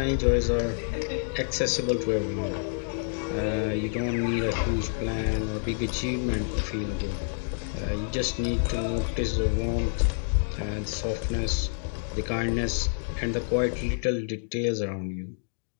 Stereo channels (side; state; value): right; silent; digital silence